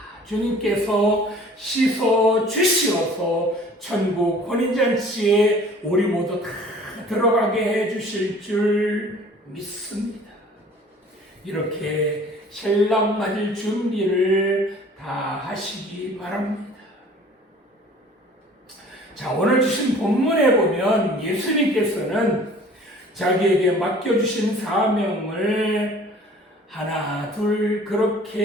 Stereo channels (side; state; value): both; normal; correlation 0.49